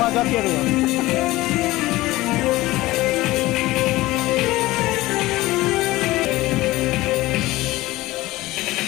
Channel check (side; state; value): right; quieter; 18.5 dB